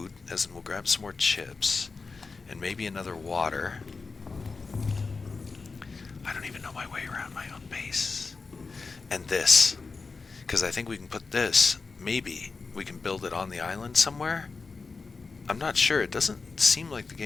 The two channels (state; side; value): quieter; right; 4.3 dB